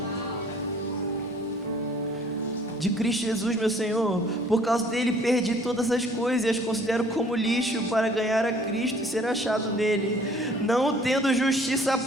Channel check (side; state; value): both; normal; correlation 0.56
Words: De Cristo Jesus, meu Senhor. Por causa dele perdi todas as coisas e as considero como lixo para ganhar a Cristo e ser achado nele, não tendo justiça